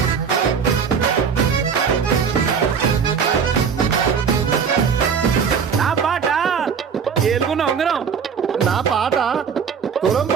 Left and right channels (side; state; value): left; quieter; 6.6 dB